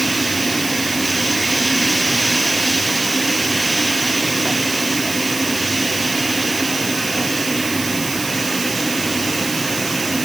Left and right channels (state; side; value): noise; right; hiss, 6 dB below the sound